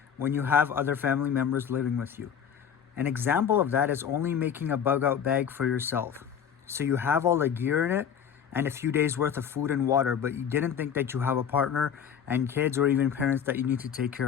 when you have other family members living with you. An example of that is only making a bug out bag for yourself. So you have all the gear in it and a few days worth of food and water, but you didn't think that you have a partner and kids or even parents that you need to take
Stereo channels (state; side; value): quieter; right; 8.1 dB